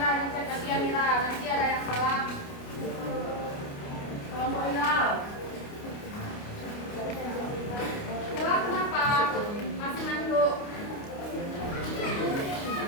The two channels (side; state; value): right; late; 29 ms